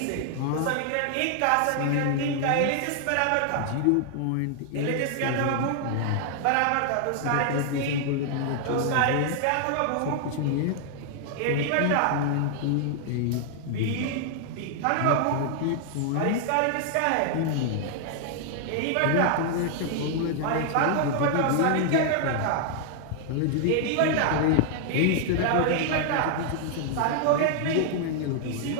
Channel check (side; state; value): both; different; correlation 0.00